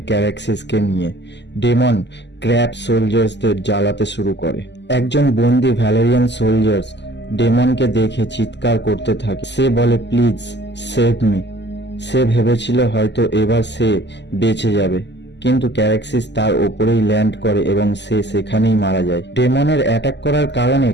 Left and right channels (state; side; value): late; right; 0.51 ms